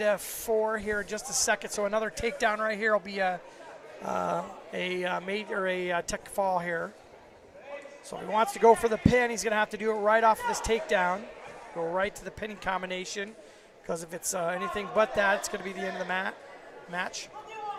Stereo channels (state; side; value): identical; both; correlation 1.00